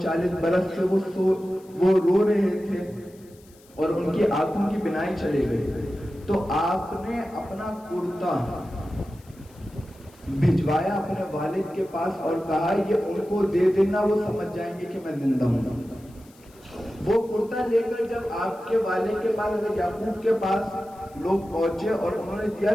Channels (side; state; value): left; noise; hiss, 28 dB below the sound